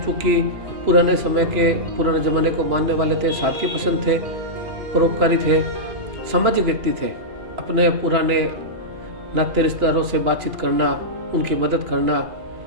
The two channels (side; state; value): left; late; 2.8 ms